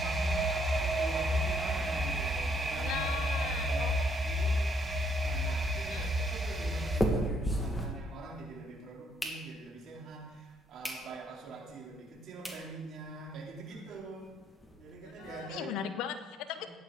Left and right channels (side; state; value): both; normal; correlation 0.70